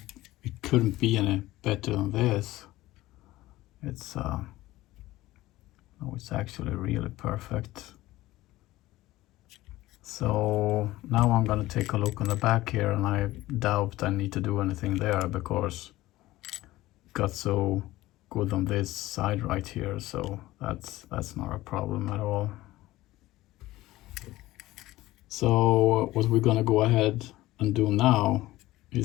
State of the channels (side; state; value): right; quieter; 17.2 dB